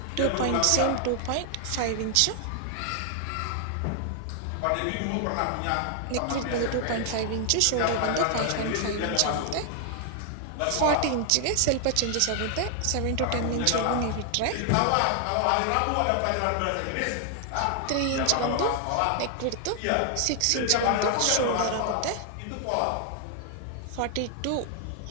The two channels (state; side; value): different; both; correlation 0.00